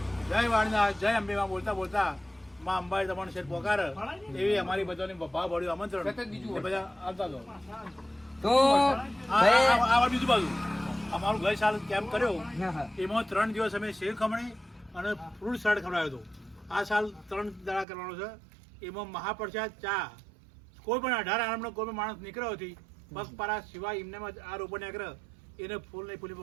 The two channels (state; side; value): drops out; left; at 17.9 s